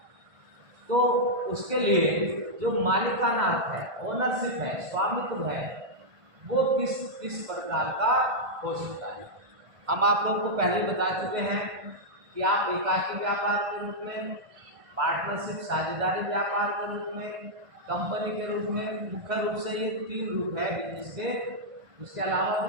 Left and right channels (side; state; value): left; late; 1.5 ms